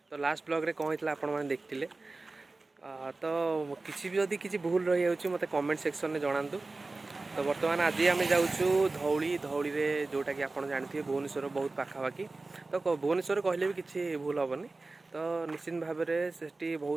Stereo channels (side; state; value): left; quieter; 3.4 dB